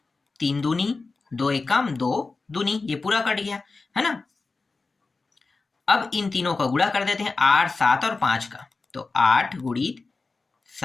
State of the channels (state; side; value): quieter; right; 3.9 dB